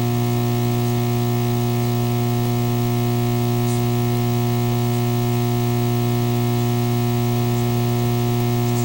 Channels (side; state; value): both; identical; correlation 1.00